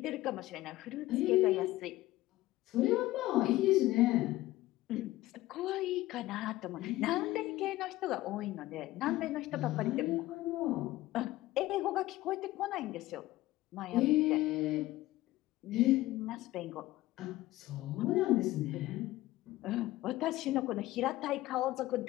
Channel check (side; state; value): right; quieter; 17.0 dB